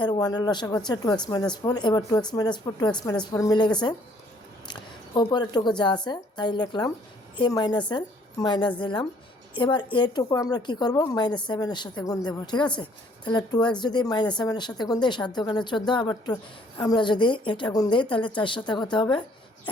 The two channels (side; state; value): both; normal; correlation 0.62